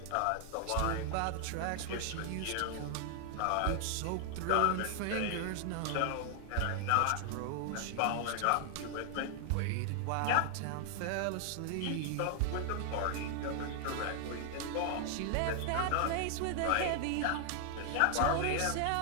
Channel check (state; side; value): different; both; correlation 0.00